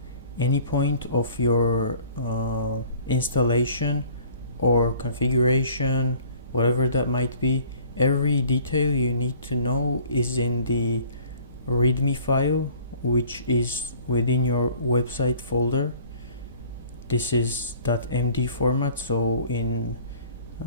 any point of your installation or configuration, whatever that might be, every detail you need to know is in the README file, which is within your website folder. This is .md format, so in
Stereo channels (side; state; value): both; inverted; correlation -0.51